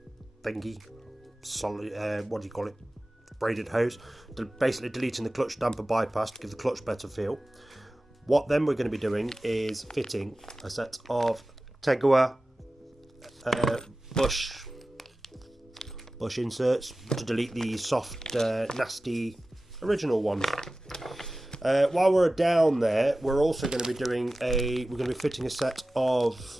solid. What do you call it? Braided hose, basically deleting the clutch damper bypass to give the clutch better feel. What then we're going to be doing is fitting a set of Tegiwa bush inserts to delete the soft, nasty original ones. While we're down there, we're also going to be fitting a set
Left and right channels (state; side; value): normal; both; correlation 0.96